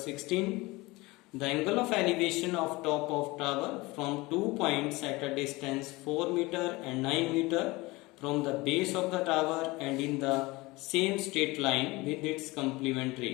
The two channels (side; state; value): right; quieter; 22.2 dB